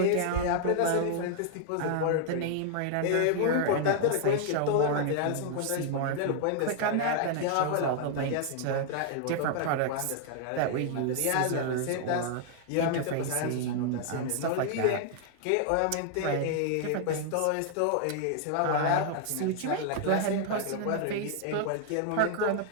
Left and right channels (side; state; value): both; different; correlation 0.00